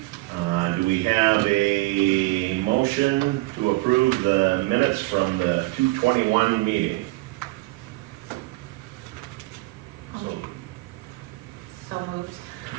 Do we have a motion to approve the minutes from the 2/21 meeting? So moved.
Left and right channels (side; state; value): left; quieter; 21.4 dB